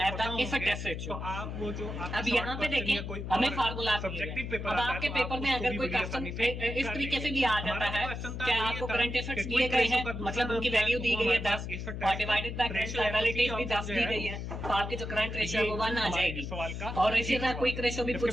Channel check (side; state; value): left; noise; hum, 6 dB below the sound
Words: the asset test ratio. अब यहाँ पे देखें हमें फार्मूला अब आपके पेपर में अगर कोई क्वेश्चन इस तरीके से भी आ जाता है कि आपको करंट एसेट्स दिए गए हैं, मतलब उनकी वैल्यू दी गई है 10 और डिवाइडेड बाय करंट लायबिलिटी भी 10 दी गई है, तो आपकी जो करंट रेशियो है वो 1 आ जाएगी। और इसी तरह क्विक रेशियो भी